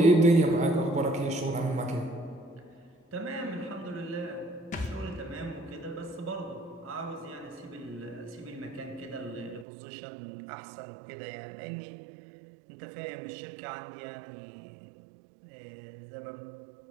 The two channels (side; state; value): left; drops out; at 9.7 s